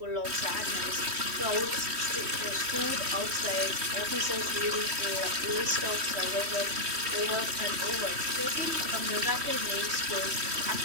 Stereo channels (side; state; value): left; late; 3.1 ms